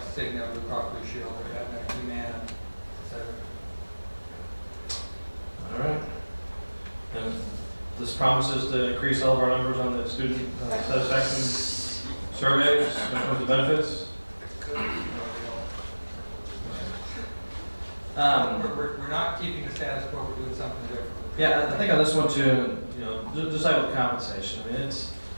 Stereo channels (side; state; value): both; inverted; correlation -1.00